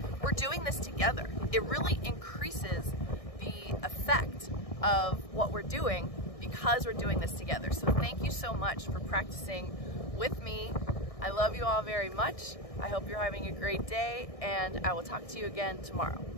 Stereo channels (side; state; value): right; late; 1.6 ms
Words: we're doing this together. It really increases the effect of what we're doing because we're doing this together. So thank you so much for practicing with me. I love you all very much. I hope you're having a great day, and I will talk to you again tomorrow.